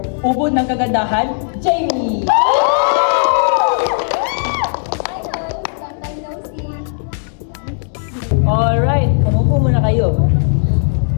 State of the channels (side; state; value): right; silent; digital silence